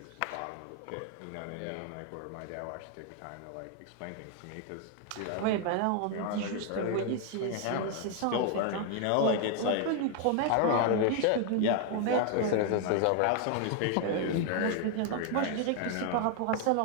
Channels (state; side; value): different; both; correlation 0.00